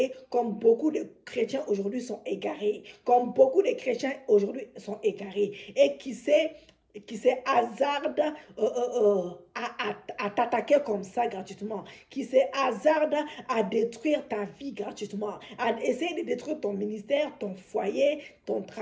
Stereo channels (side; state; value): both; identical; correlation 1.00